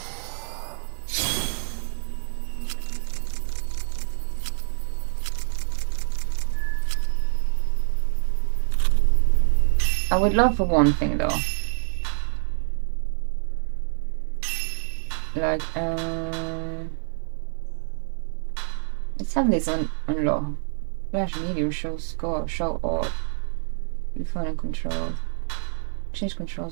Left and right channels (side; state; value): left; silent; digital silence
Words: I would love for one thing though. Let's have this on low. Flash medium, show score, show all. Refine and control. Change